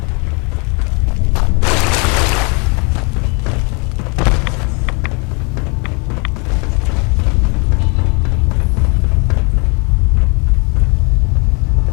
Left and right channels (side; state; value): right; quieter; 32.9 dB